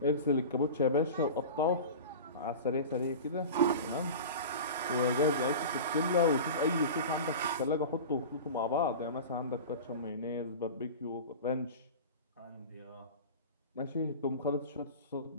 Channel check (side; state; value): both; inverted; correlation -0.32